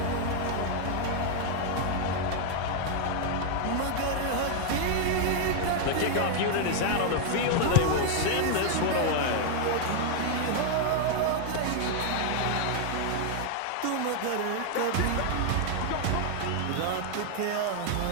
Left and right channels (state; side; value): different; both; correlation 0.00